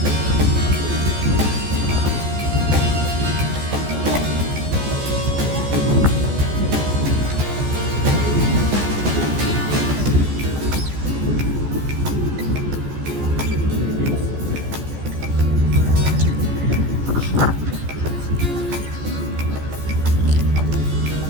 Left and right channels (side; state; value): left; late; 14 ms